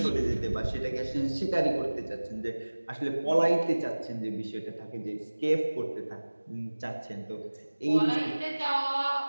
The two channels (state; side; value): inverted; both; correlation -1.00